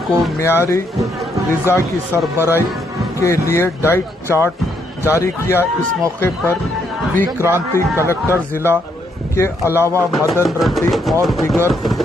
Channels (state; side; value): normal; both; correlation 0.74